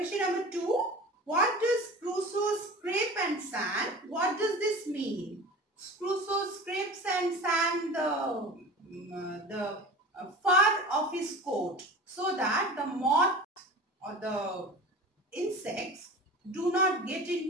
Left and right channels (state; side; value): normal; both; correlation 0.35